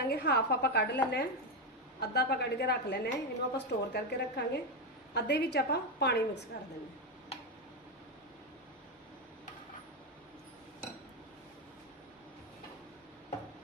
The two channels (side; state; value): both; normal; correlation 0.09